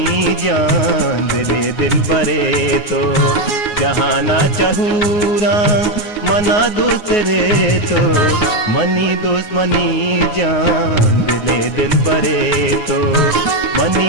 जान दिले दिल बरे तो, जहाँ ना चहूरा मना दूसरे तो, मनी दुश्मनी जान दिले दिल बरे तो,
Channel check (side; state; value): right; late; 9.5 ms